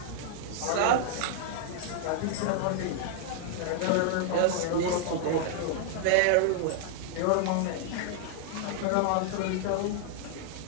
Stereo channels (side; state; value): both; different; correlation -0.01